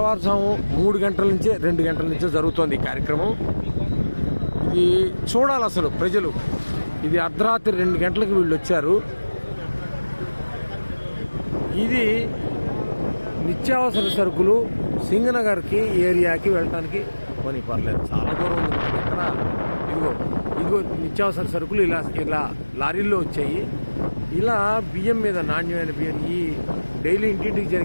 3 గంటల నుంచే 2 గంటల నుంచే జరుగుతోంది ఈ కార్యక్రమం. ఇది చూడాలి అసలు ప్రజలు. ఇది అర్ధరాత్రి 2 గంటలకు వీళ్ళు వచ్చారు. ఇది నిత్యావసర సరుకులు సింగనగర్కి ఏరియాకి వెళ్ళటానికి కొని పర్లేదు, చాలా దూరం ఉంది మనకి. ఎక్కడ ఇదిగో నిత్యావసర సరుకులు ఇలా లారీల్లో వచ్చాయి. ఇలా బియ్యం మీద, నాణ్యమైన బియ్యం, ఈ డైలీ ఇంటింటికి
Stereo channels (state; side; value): inverted; both; correlation -1.00